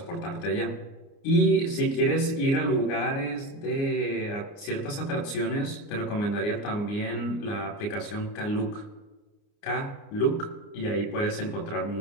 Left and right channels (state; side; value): late; right; 29 ms